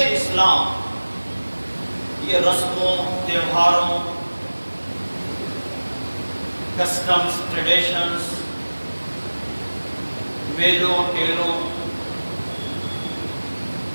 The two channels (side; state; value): both; inverted; correlation -1.00